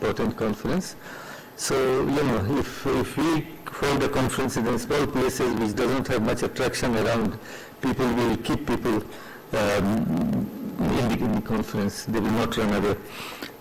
conference. So, you know, if we hold a conference in small places which doesn't have much attraction around, people will keep people in the conference. They will not run away.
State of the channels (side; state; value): both; identical; correlation 1.00